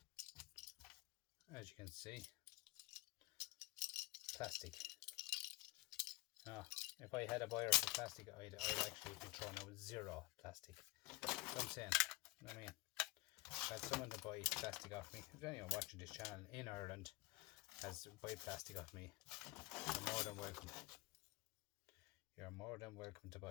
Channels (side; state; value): right; quieter; 21.9 dB